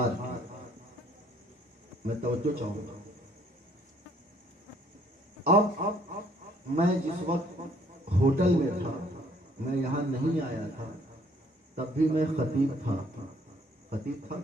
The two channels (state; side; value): normal; both; correlation 0.62